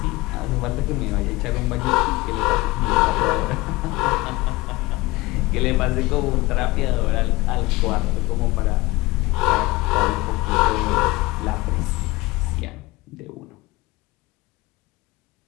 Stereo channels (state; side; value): quieter; right; 21.1 dB